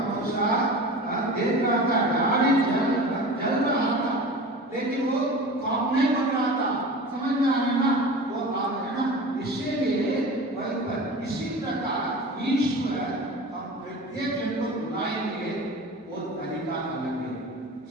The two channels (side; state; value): both; normal; correlation 0.35